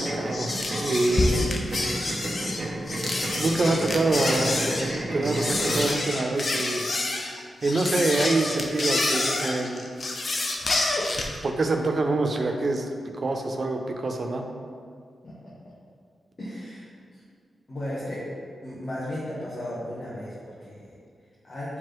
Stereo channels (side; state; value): both; normal; correlation 0.88